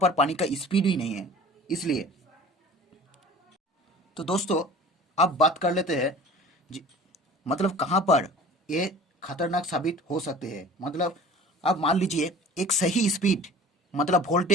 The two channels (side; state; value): both; normal; correlation 0.43